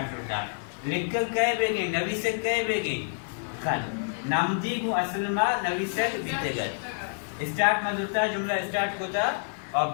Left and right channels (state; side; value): silent; right; digital silence